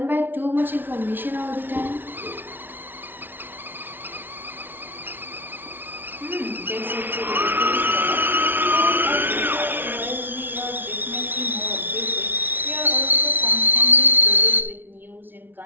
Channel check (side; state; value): left; late; 0.097 ms